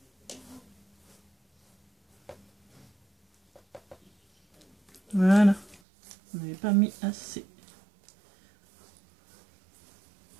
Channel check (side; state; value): left; drops out; at 5.8 s